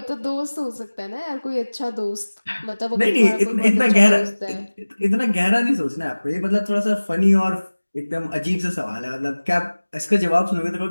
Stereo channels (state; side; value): inverted; both; correlation -1.00